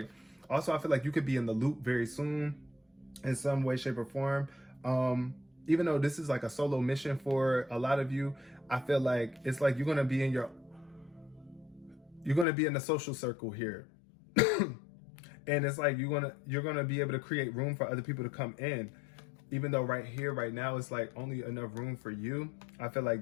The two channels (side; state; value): right; drops out; at 12.5 s